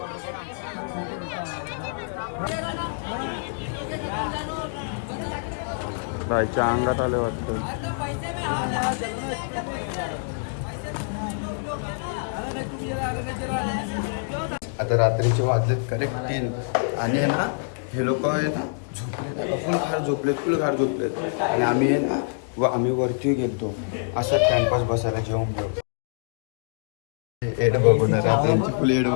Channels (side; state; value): right; silent; digital silence